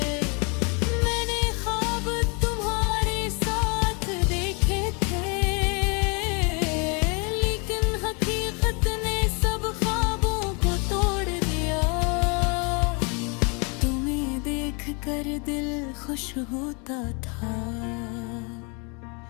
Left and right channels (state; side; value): quieter; right; 32.9 dB